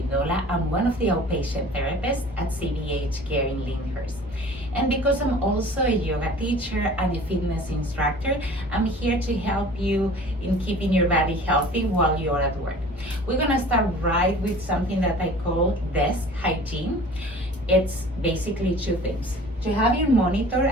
I'm one of the outpatient therapists at CBH Care in Lyndhurst. And because I'm also a yoga teacher and a fitness instructor, I'm here to help you in keeping your body healthy while you're at work. We're gonna start right with something that I call desk hygiene. It's basically two things. To have your monitor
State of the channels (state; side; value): normal; both; correlation 0.45